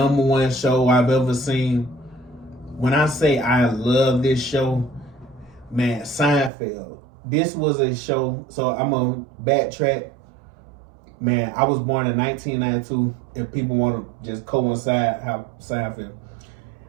show I've ever seen. When I say I love this show, man, Seinfeld. This was a show, so I'm going to backtrack. Man, I was born in 1992, if people want to just coincide how Seinfeld.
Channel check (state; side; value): drops out; left; at 6.5 s